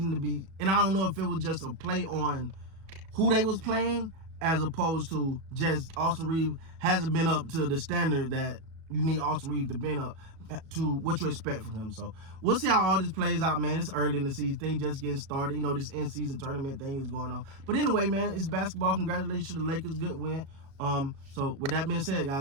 to be, and I don't know if it was just a play on who they was playing as opposed to just Austin Reeves hasn't been up to the standard that you need Austin Reeves to be up to what you expect from him. So we'll see how all this plays out, man. It's early in the season. Things just getting started. This in-season tournament thing is going on. But anyway, man, it's basketball. Congratulations to the Lakers. Good win. So with that being said,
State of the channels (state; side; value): late; left; 37 ms